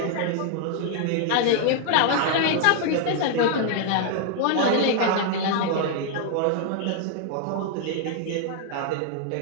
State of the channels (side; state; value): both; different; correlation 0.00